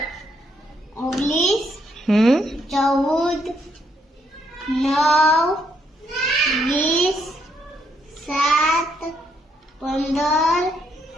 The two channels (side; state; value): both; normal; correlation 0.74